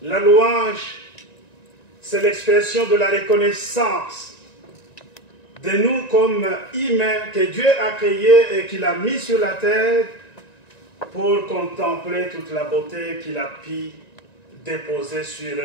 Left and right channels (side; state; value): right; late; 1.9 ms